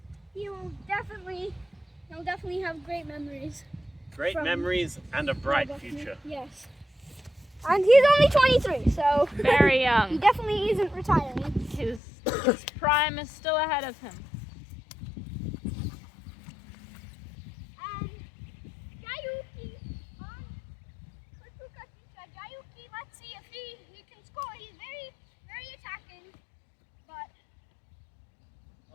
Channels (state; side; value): drops out; right; at 12.0 s